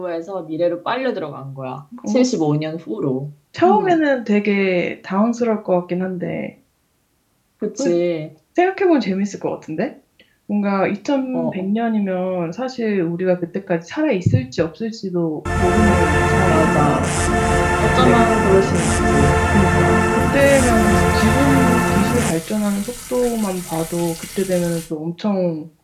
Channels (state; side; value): identical; both; correlation 1.00